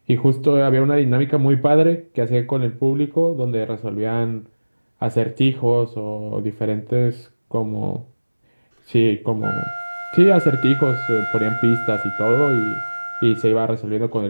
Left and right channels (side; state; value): both; inverted; correlation -1.00